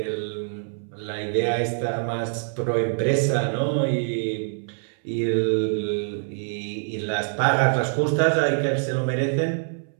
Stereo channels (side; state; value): left; silent; 62 dB below the other